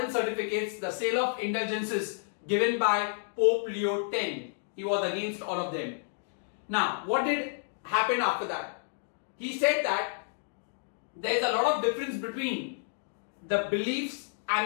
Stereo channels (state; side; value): silent; right; digital silence